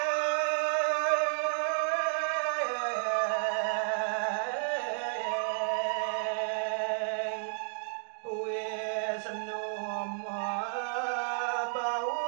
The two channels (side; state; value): left; silent; digital silence